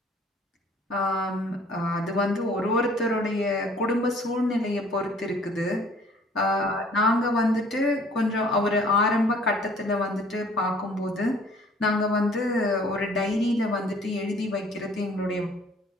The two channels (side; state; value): both; normal; correlation 0.55